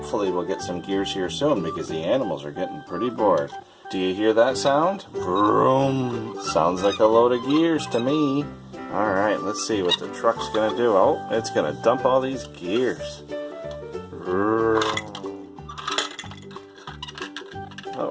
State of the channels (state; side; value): identical; both; correlation 1.00